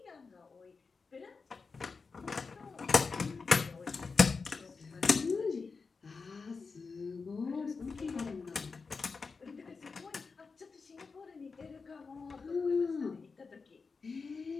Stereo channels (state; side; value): quieter; right; 4.7 dB